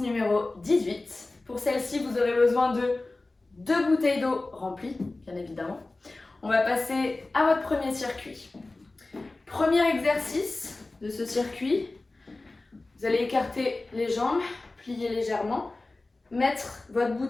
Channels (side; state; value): right; quieter; 3.1 dB